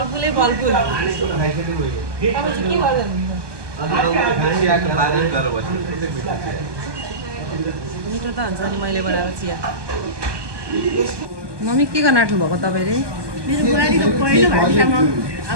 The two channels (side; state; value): left; late; 1.2 ms